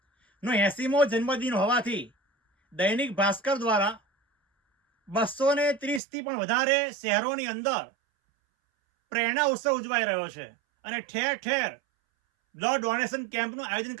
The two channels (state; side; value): drops out; left; at 6.0 s